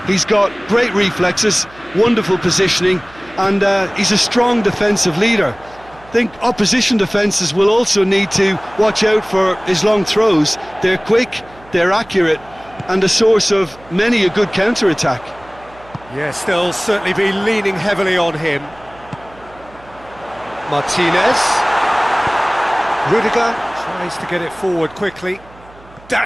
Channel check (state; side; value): noise; right; hum, 24 dB below the sound